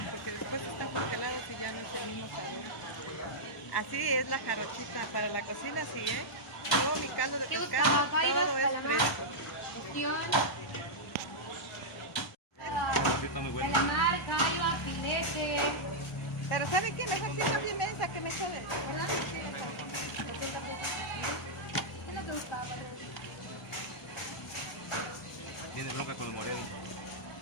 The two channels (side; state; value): both; normal; correlation -0.07